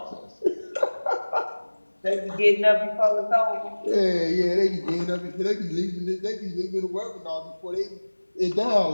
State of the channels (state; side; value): inverted; both; correlation -1.00